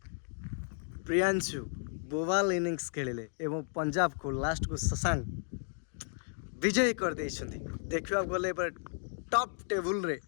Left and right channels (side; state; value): right; silent; digital silence